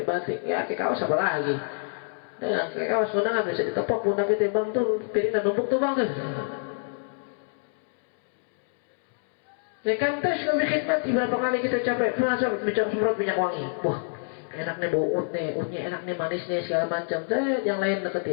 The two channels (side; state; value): right; silent; 60 dB below the other